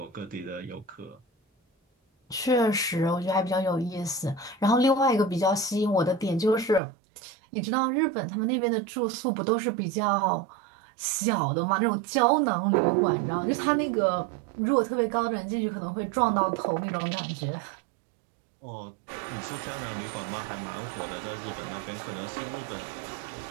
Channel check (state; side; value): drops out; left; at 6.8 s